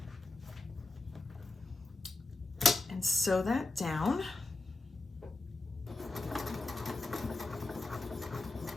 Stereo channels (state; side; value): quieter; right; 3.1 dB